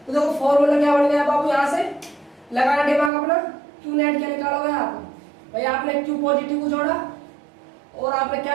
तो देखो फॉर्मूला क्या बन गया बाबू, यहाँ से लगाना दिमाग अपना, क्यू नेट क्या निकालोगे आप भाई, आपने क्यू पॉजिटिव को जोड़ा और आपने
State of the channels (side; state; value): left; drops out; at 3.1 s